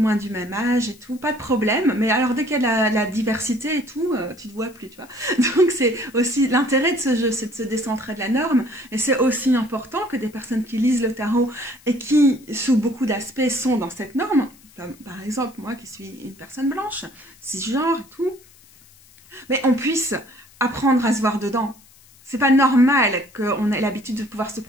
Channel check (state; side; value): noise; left; hiss, 26 dB below the sound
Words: du même âge et tout, pas de problème. Mais alors dès qu'il y a la diversité et tout, tu te vois plus, tu vois. Donc c'est aussi l'intérêt de ce jeu, c'est de se décentrer de la norme. Et c'est aussi important que des personnes qui lisent le tarot et qui, sous beaucoup d'aspects, sont dans cette norme, comme par exemple moi qui suis une personne blanche, cisgenre et tout, mais on puisse apprendre à se voir dedans. C'est pas normal qu'on ait l'habitude de pouvoir se